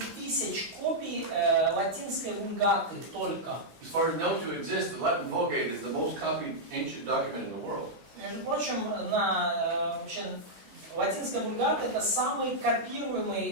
тысяч копий латинской вульгаты только. As far as known to exist, the Latin Vulgate is the most copied ancient document in the world. Между прочим, вообще, латинская вульгата это самый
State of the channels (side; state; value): left; late; 16 ms